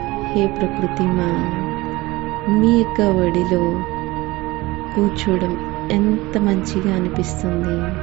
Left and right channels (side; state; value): left; quieter; 20.6 dB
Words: హే ప్రకృతి మా, మీ యొక్క ఒడిలో కూర్చోవడం ఎంత మంచిగా అనిపిస్తుంది.